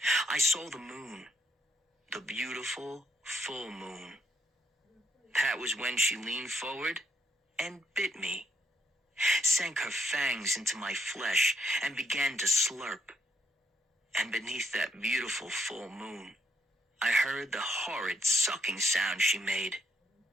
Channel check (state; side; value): normal; both; correlation 0.73